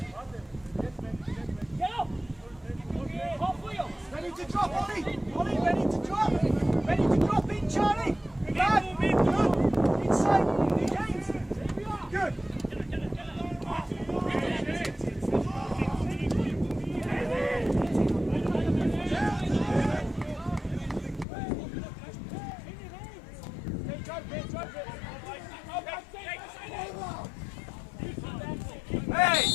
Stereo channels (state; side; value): drops out; right; at 21.2 s